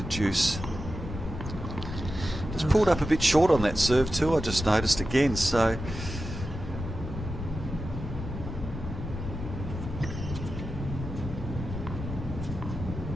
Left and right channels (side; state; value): left; noise; rumble, 7 dB below the sound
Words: Juice. Just pulled up a bit short on that serve too, I just noticed again, so